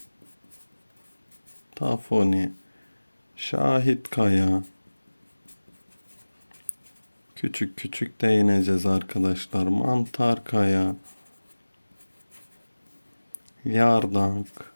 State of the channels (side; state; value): both; inverted; correlation -1.00